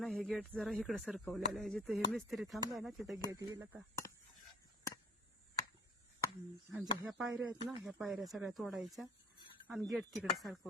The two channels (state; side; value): normal; both; correlation 0.53